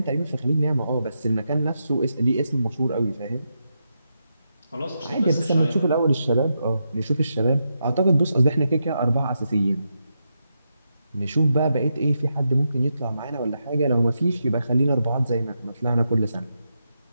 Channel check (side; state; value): both; inverted; correlation -0.85